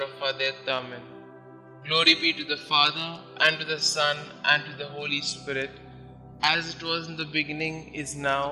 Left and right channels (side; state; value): both; identical; correlation 1.00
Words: of our death. Amen. Glory be to the Father, and to the Son, and to the Holy Spirit, as it was in the beginning, is